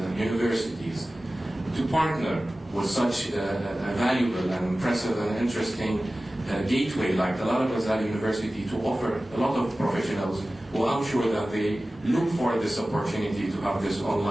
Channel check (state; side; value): normal; both; correlation 0.96